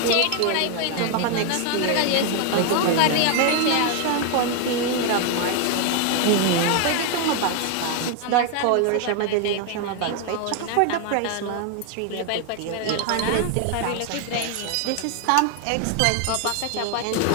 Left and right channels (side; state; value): both; different; correlation 0.01